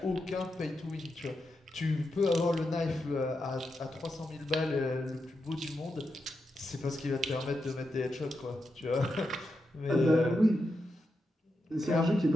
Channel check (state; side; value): normal; both; correlation 0.86